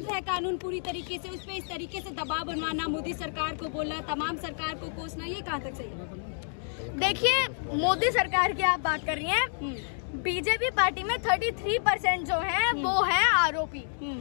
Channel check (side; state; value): right; silent; digital silence